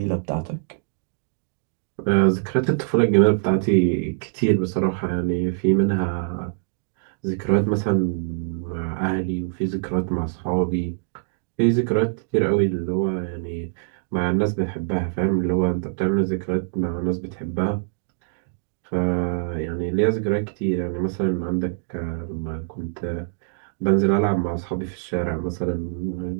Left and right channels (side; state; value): left; silent; digital silence